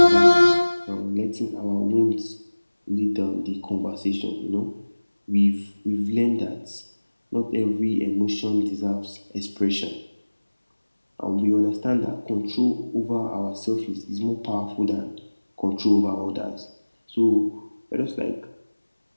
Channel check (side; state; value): both; inverted; correlation -1.00